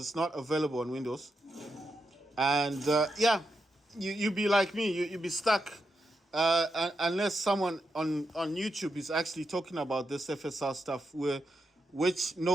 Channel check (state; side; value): normal; both; correlation 0.85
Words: not available on Windows. And yeah, you be like me, you be stuck unless someone on YouTube is actually talking about this FSR stuff, which